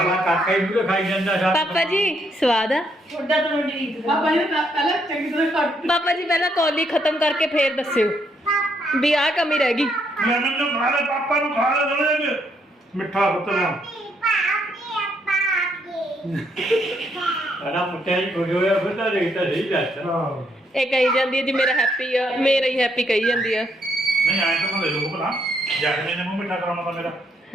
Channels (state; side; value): normal; both; correlation 0.74